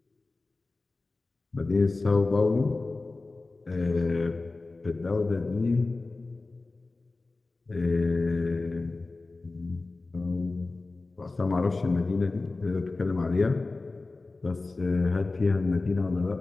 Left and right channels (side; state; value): right; quieter; 3.4 dB